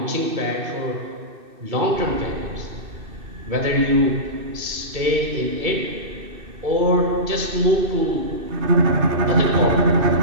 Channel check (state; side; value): late; left; 2.6 ms